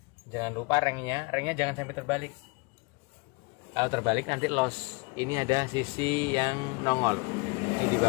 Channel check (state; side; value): quieter; right; 28.6 dB